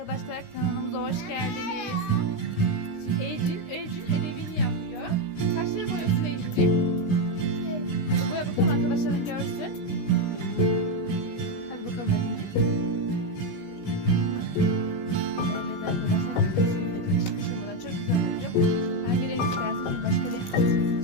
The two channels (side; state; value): right; late; 16 ms